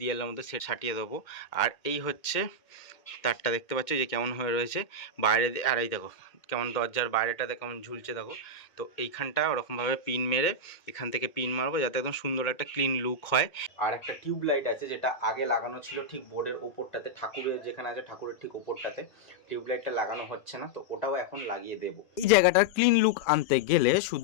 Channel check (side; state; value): right; late; 2.1 ms